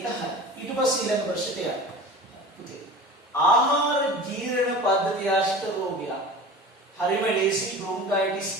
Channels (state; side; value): normal; both; correlation 0.37